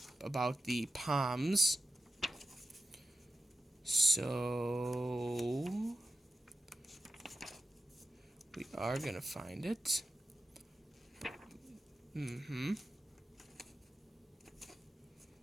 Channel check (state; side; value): normal; both; correlation 0.92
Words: about the Palms. So we are gonna find it.